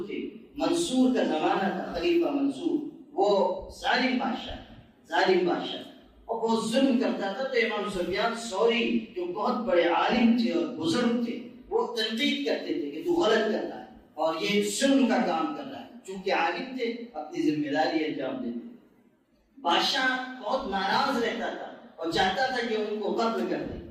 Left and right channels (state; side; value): identical; both; correlation 1.00